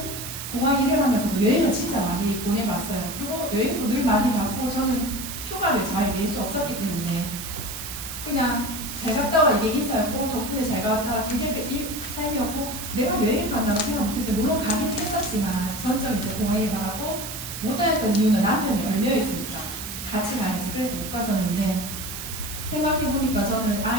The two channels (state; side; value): noise; right; hiss, 8 dB below the sound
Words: 공항 일을 하면서도 여행을 진짜 많이 보내봤어요. 그리고 여행도 늘 많이 받고 저는 휴가를 잘 낼 수 없었기 때문에 그냥 잘 갔다 와 이게 인사였고 덕분에 잘 갔다 그게 삶이었고 내가 여행을 간다고 생각 못했어요. 물론 가긴 했었지만 전적 이제 공항 일을 받았고 못 다녔던 이유는 남편이 얼매여 있으니까 같이 가야지. 그래서 못 갔었는데 생각해보니까 저는